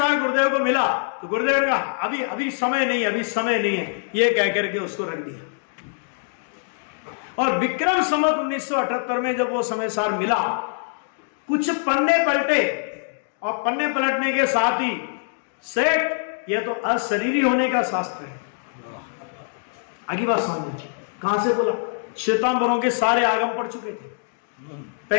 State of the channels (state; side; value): silent; right; digital silence